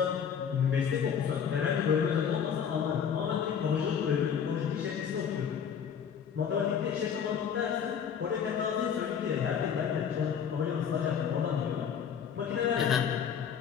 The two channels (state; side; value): quieter; right; 7.7 dB